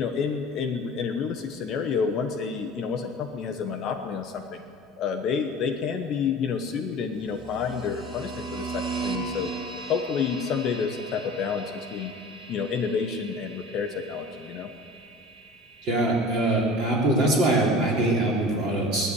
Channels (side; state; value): both; normal; correlation 0.40